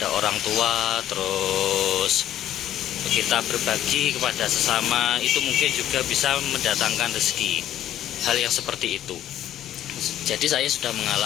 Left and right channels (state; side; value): quieter; right; 11.9 dB